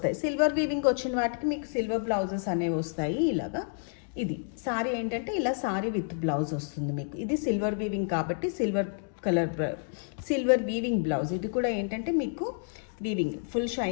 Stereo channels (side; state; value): right; silent; 58 dB below the other